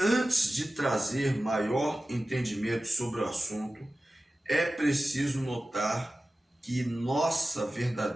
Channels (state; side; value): normal; both; correlation 0.95